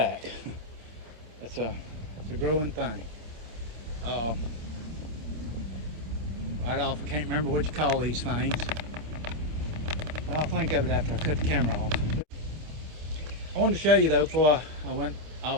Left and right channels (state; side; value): late; left; 26 ms